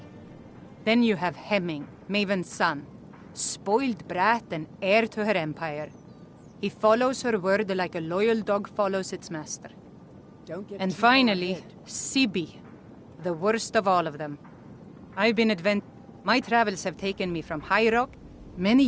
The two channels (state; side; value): identical; both; correlation 1.00